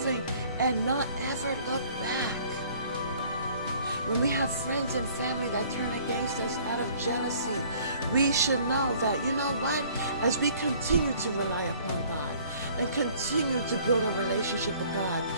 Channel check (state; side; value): inverted; both; correlation -0.55